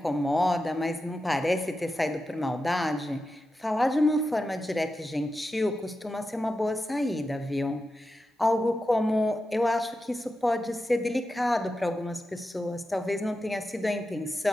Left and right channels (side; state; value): both; normal; correlation 0.90